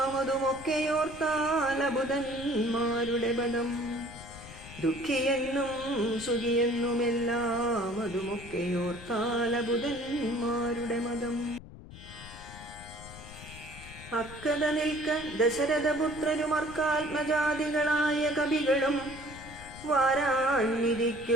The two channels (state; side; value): noise; left; rumble, 16 dB below the sound